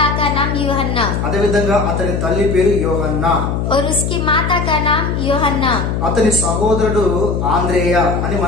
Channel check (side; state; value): left; noise; hum, 1 dB below the sound